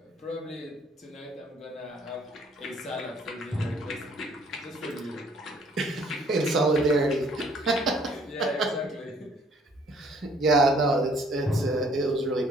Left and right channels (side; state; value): both; normal; correlation 0.60